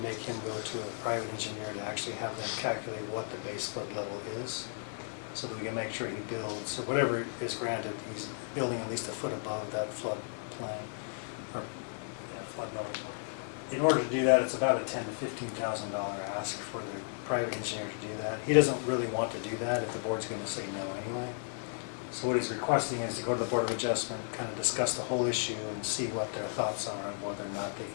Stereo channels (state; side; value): silent; right; 55 dB below the other